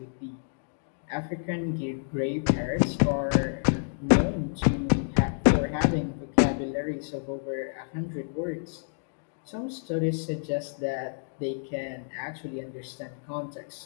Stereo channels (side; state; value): right; silent; digital silence